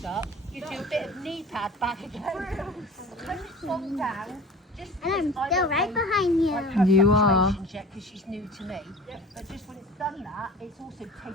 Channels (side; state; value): both; normal; correlation 0.40